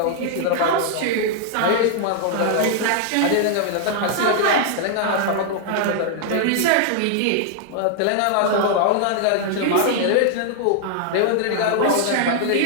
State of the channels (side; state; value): both; different; correlation 0.00